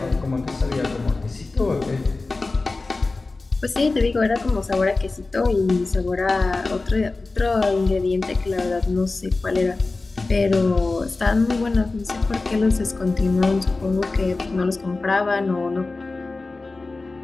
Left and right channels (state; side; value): quieter; right; 3.5 dB